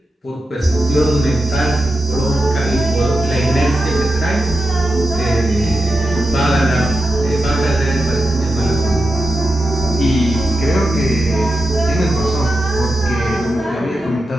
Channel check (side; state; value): both; normal; correlation 0.89